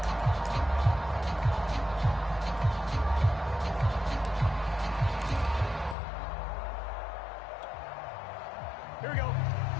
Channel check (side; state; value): right; drops out; at 6.0 s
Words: Here we go.